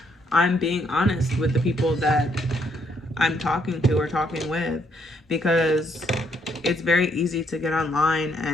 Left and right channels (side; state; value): both; normal; correlation 0.71